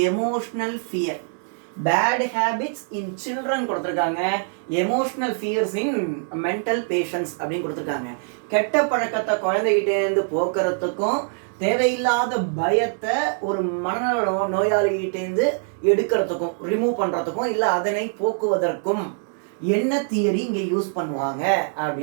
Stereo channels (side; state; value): left; silent; 63 dB below the other